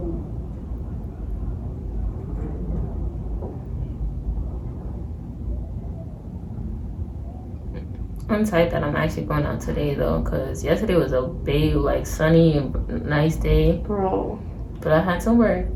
I'm tight that I'm actually going out today though, cause yesterday was a big, like, sunny and nice day. Bro. But I had to work,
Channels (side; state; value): both; identical; correlation 1.00